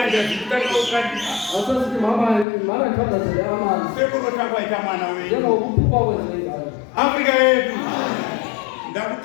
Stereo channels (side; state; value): right; drops out; at 2.5 s